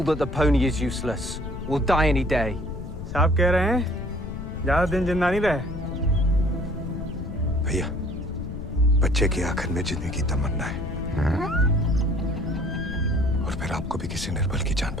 that the pony is useless. We'll die any day. साहब कह रहे हैं ज्यादा दिन जिंदा नहीं रहे। भैया, बच्चे की आखिर में जीने की तमन्ना है। और फिर आपको भी किसी निर्बल की जान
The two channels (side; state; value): left; noise; rumble, 9 dB below the sound